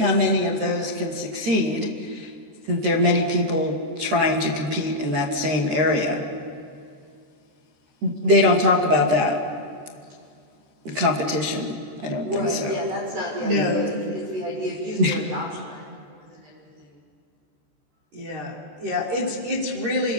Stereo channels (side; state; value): left; late; 13 ms